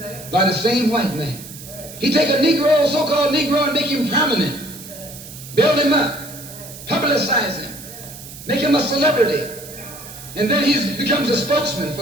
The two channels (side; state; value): right; noise; hiss, 15 dB below the sound